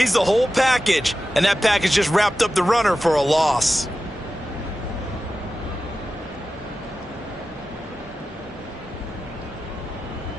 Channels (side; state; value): both; normal; correlation 0.93